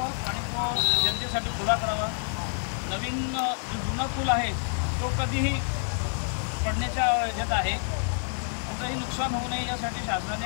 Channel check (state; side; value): silent; right; digital silence